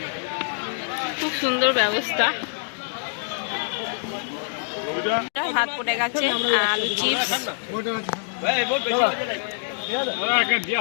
খুব সুন্দর ব্যবস্থা। ভাত পড়ে গেছে, আলু চিপস,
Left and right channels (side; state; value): right; silent; digital silence